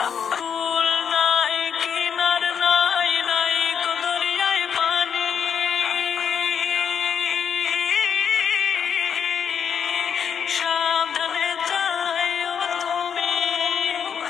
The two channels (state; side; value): quieter; right; 7.5 dB